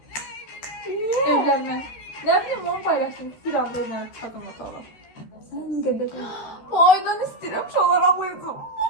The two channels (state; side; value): late; right; 13 ms